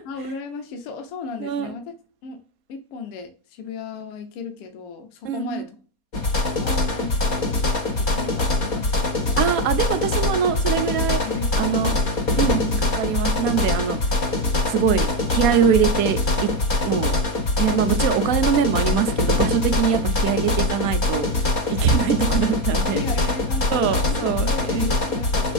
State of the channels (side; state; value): right; late; 4.3 ms